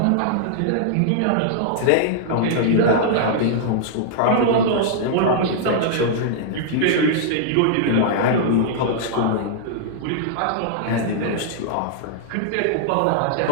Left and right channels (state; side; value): different; both; correlation -0.01